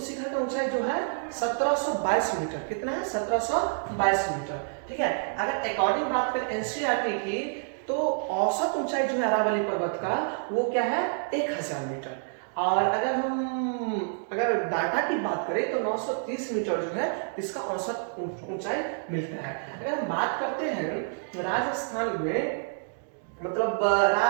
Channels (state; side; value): silent; left; digital silence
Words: शिखर का ऊंचाई जो है 1722 मीटर। कितना है? 1722 मीटर। ठीक है, अगर अकॉर्डिंग बात करें एनसीईआरटी की, तो औसत ऊंचाई जो है अरावली पर्वत का वो क्या है? 1000 मीटर। और अगर डाटा की बात करें तो 930 मीटर जो है इसका औसत ऊंचाई मिलता है। अगर हम बात करते हैं राजस्थान में, मतलब